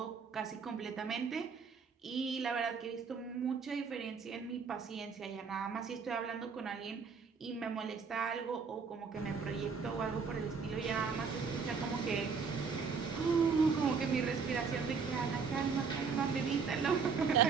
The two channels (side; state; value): left; quieter; 5.5 dB